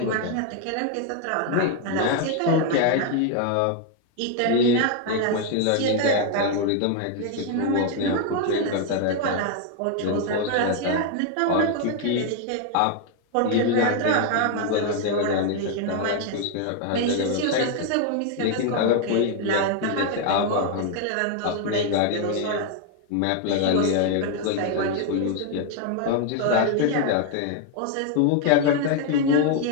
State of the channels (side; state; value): both; different; correlation 0.00